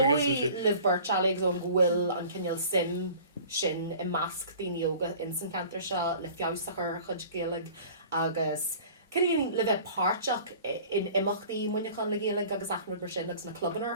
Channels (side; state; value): both; inverted; correlation -0.45